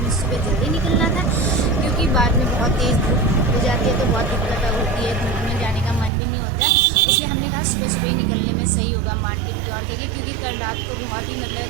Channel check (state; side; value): drops out; left; at 6.1 s